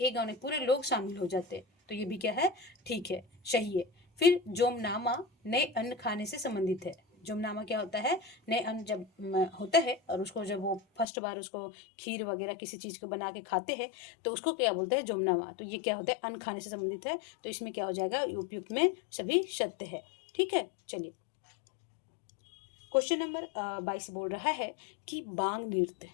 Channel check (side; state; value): right; drops out; at 11.1 s